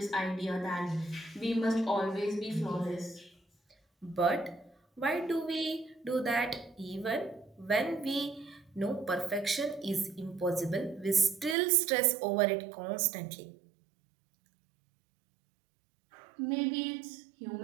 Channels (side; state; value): left; drops out; at 11.6 s